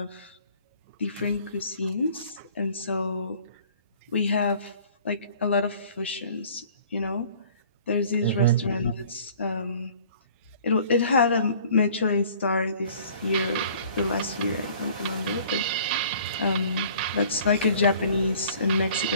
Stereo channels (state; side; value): inverted; both; correlation -0.51